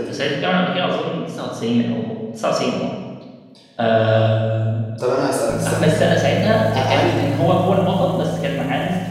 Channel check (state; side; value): identical; both; correlation 1.00